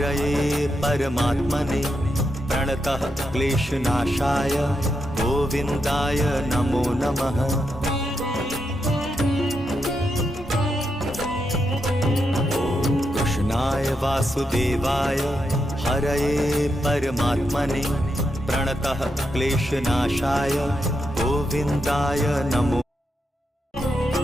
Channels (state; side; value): normal; both; correlation 0.84